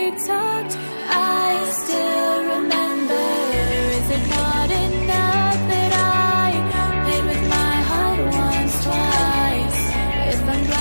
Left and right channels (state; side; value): inverted; both; correlation -1.00